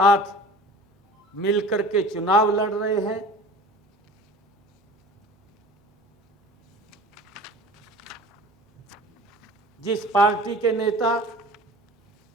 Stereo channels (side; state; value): both; normal; correlation 0.42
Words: मिलकर के चुनाव लड़ रहे हैं। जिस पार्टी के नेता